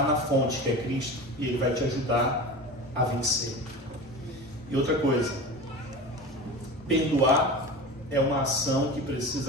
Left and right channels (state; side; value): normal; both; correlation 0.31